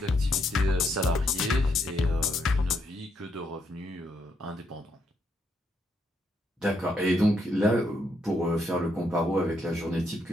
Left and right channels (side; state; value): both; normal; correlation 0.76